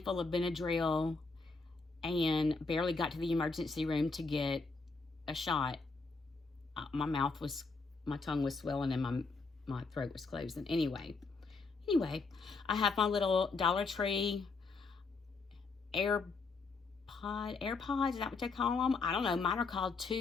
of Benadryl and barely got to the emergency room to get a shot. My tongue was swelling and my throat was closed. And anyway, I have my little Dollar Tree AirPods, is that what they call them? I don't know. Mine are called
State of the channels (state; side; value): quieter; right; 4.1 dB